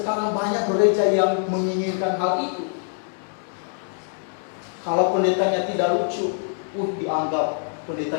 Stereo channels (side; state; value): right; silent; digital silence